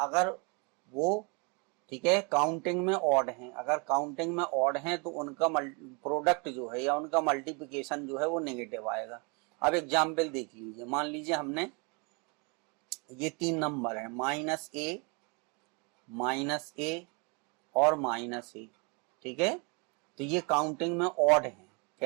वो ठीक है काउंटिंग में ऑड हैं, अगर काउंटिंग में ऑड हैं तो उनका प्रोडक्ट जो है या उनका मल्टीप्लिकेशन जो है वो नेगेटिव आएगा। अब एग्जाम्पल देख लीजिए, मान लीजिए हमने ये 3 नंबर है माइनस ए और माइनस ए, ठीक है, तो ये काउंटिंग में ऑड हैं।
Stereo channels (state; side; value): quieter; left; 31.9 dB